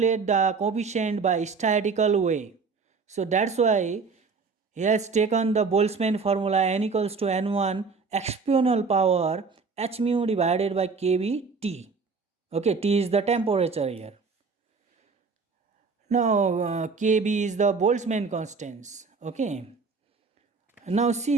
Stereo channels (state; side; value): quieter; left; 4.8 dB